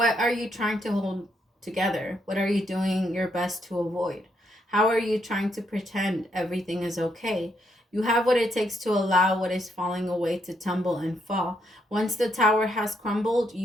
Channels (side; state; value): both; normal; correlation 0.76